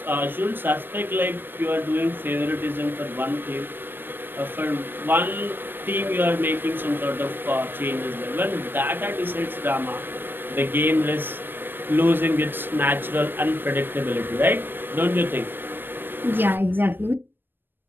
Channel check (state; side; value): late; left; 0.096 ms